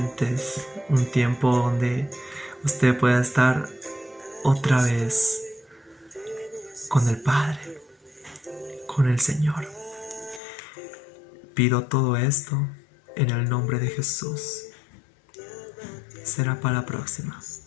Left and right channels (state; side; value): drops out; right; at 10.4 s